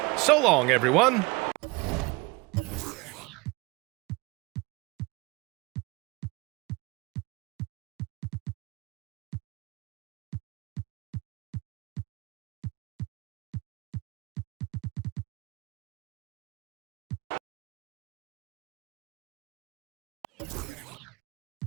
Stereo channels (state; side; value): quieter; left; 25.1 dB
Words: So long, everyone.